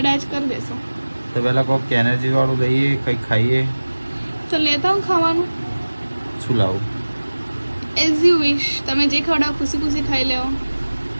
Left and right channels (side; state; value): both; inverted; correlation -1.00